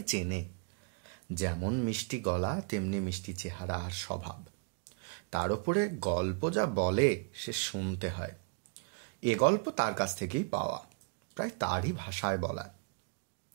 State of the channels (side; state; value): left; quieter; 32.6 dB